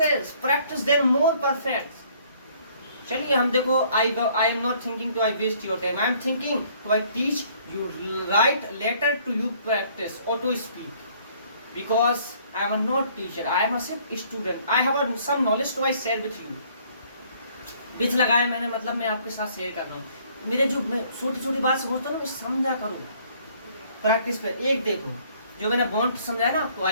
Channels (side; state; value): both; inverted; correlation -0.61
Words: practice then more perfect. चलिए हम देखो, I am not thinking to I waste your time, I am thinking to I teach you write letter to you practice और to speak because I am not teacher, I am a student, I have some knowledge to I share with you। बिच लगाया मैंने, मतलब मैं आपके साथ share कर रहा हूँ। मेरे जो मैं छोटी छोटी बात समझता हूँ ना, मैं समझा करूँ प्रैक्टिस पे। एक देखो, जो मैंने वांट समझाया ना आपको,